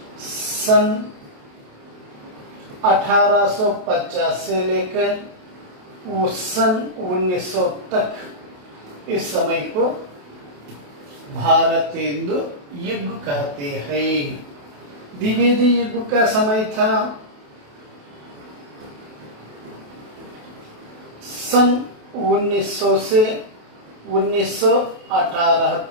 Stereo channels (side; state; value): left; late; 28 ms